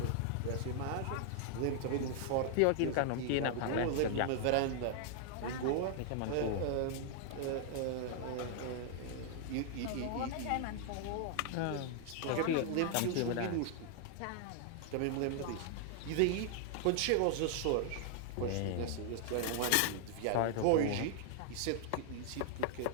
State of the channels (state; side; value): different; both; correlation 0.00